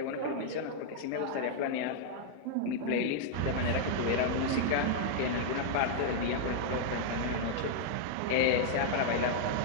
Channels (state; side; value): different; both; correlation 0.00